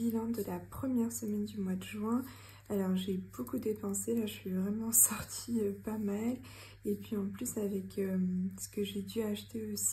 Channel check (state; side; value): identical; both; correlation 1.00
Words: de la première semaine du mois de juin. Alors j'ai beaucoup dépensé, là je suis vraiment sortie pas mal. Et puis en plus avec ce que j'ai dû acheter